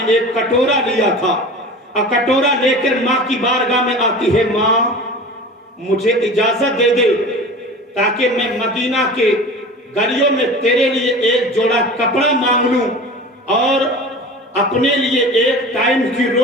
ایک کٹورا لیا تھا، اور کٹورا لے کر ماں کی بارگاہ میں آتی ہے، ماں مجھے اجازت دے دے تاکہ میں مدینہ کے گلیوں میں تیرے لیے ایک جوڑا کپڑا مانگ لوں اور اپنے لیے ایک ٹائم کی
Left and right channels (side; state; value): both; normal; correlation 0.36